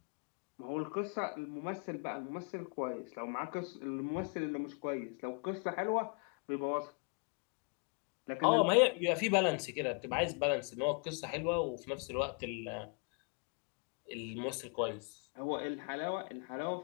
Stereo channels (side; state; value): right; quieter; 38.8 dB